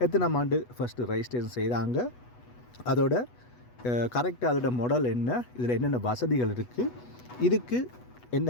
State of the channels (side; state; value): right; late; 8.2 ms